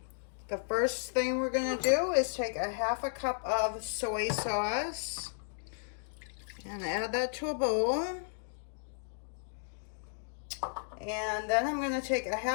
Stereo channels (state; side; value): silent; right; digital silence